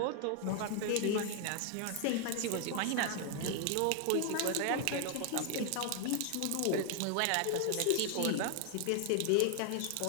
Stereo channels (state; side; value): different; both; correlation 0.01